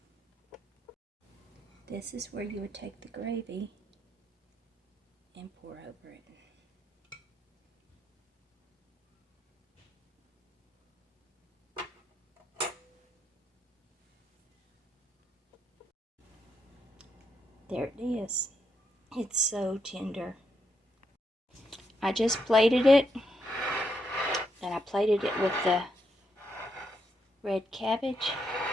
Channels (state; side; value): normal; both; correlation 0.79